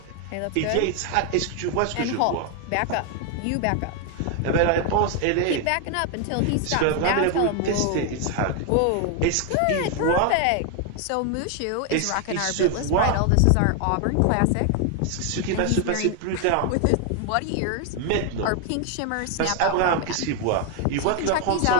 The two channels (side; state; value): both; different; correlation 0.01